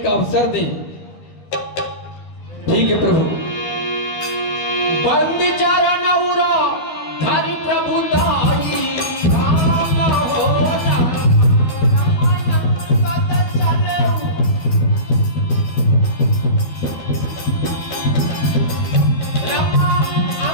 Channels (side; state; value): right; late; 13 ms